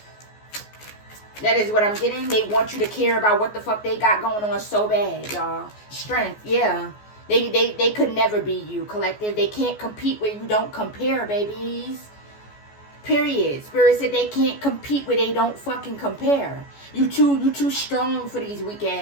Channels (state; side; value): late; right; 14 ms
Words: That is what I'm getting. They want you to care about what the fuck they got going on so bad, y'all. Strength, yeah. They could never be you, collective. They can't compete where you don't compare, babies. Period. Spirit said they can't compete where they don't fucking compare. You too strong for these weak